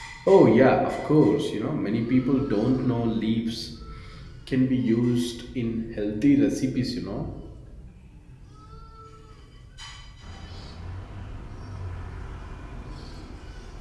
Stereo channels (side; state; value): both; identical; correlation 1.00